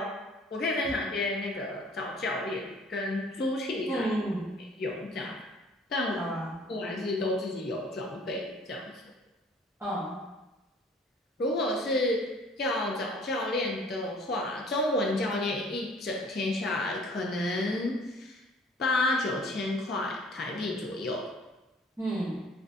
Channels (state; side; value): normal; both; correlation 0.53